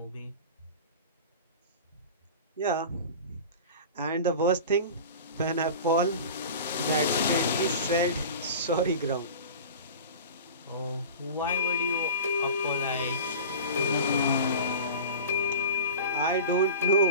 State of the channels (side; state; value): both; inverted; correlation -0.35